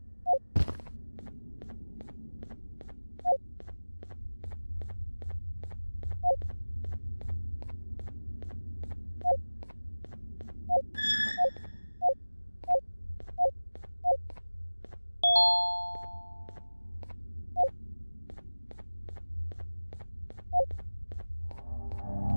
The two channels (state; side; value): inverted; both; correlation -1.00